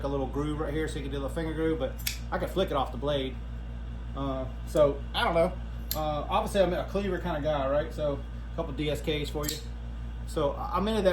a little groove right here so you can do the finger groove, but I could flick it off the blade. So I don't know. Obviously I'm a cleaver kind of guy, right? So a couple DSKs for you. So I'm into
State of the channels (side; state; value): both; identical; correlation 1.00